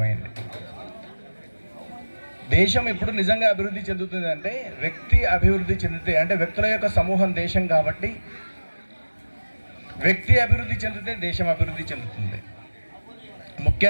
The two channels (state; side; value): inverted; both; correlation -1.00